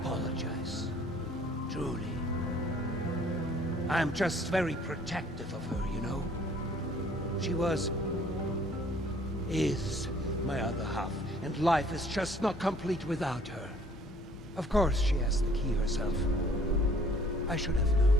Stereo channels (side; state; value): both; normal; correlation 0.57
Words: Truly. I'm just very protective of her, you know? She is my other half, and life is just not complete without her. Of course she has the key herself. I should have known.